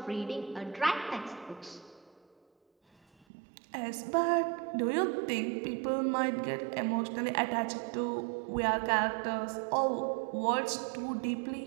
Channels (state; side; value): drops out; left; at 3.2 s